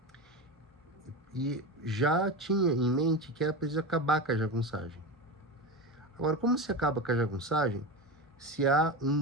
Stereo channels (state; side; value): normal; both; correlation 0.22